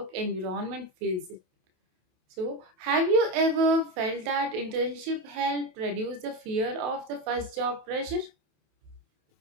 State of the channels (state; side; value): late; left; 27 ms